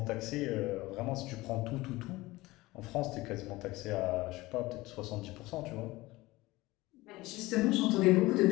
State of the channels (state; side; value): quieter; right; 19.8 dB